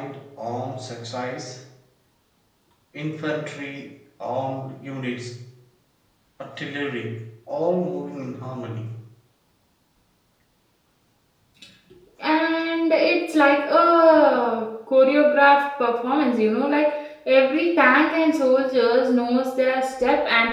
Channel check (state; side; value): identical; both; correlation 1.00